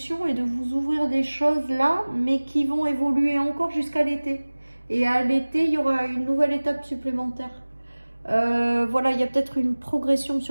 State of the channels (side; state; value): both; inverted; correlation -1.00